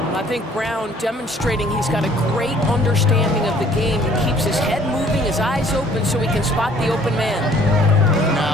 think Brown demonstrating he's got a great understanding of the game. He keeps his head moving, his eyes open so he can spot the open man.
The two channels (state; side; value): normal; both; correlation 0.58